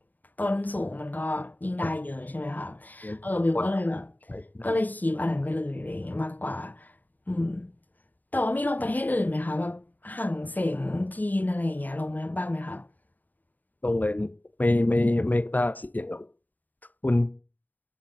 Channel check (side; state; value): right; late; 0.084 ms